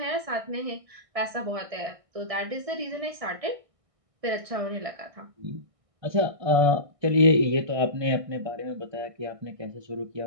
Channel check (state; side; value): late; left; 1.6 ms